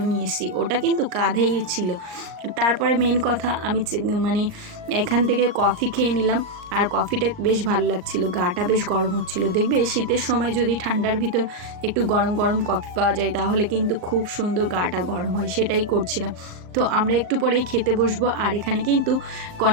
নিয়ে এসেছি, ওটা কিন্তু কাঁধেই ছিল। তারপরে মেন কথা আমি মানে এখান থেকে কফি খেয়ে নিলাম, আর কফিটা বেশ ভালো লাগছিল, গাটা বেশ গরম হচ্ছিল। দেখবে শীতের সময় যদি ঠান্ডার ভিতর একটু গরম গরম কফি পাওয়া যায় তাহলে কিন্তু খুব সুন্দর গাটা গরম হয়, সেটাই করছিলাম। তো আমরা একটু পরেই খেতে বসবো। আর এখানে কিন্তু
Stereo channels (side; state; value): left; late; 38 ms